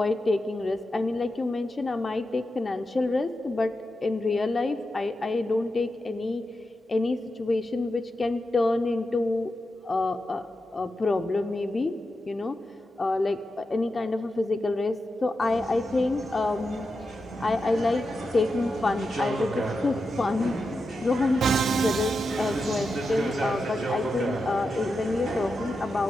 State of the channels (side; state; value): both; normal; correlation 0.89